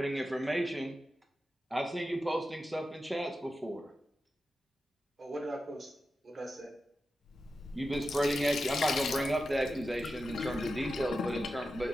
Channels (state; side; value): normal; both; correlation 0.91